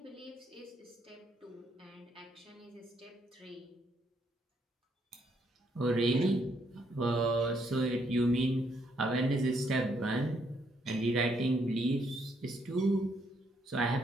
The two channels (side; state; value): both; normal; correlation 0.73